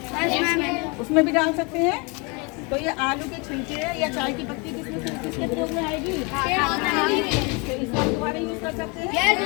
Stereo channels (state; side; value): quieter; right; 30.4 dB